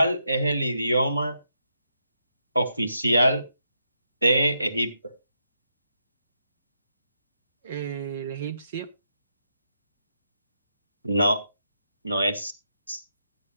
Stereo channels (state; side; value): inverted; both; correlation -0.81